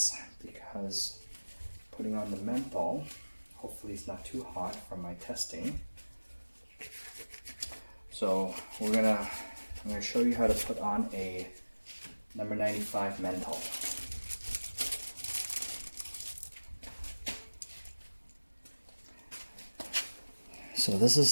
because putting on the mantle, hopefully it's not too hot from my testing. So I'm gonna show you how to put on a number 95 mantle. So this is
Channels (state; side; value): inverted; both; correlation -1.00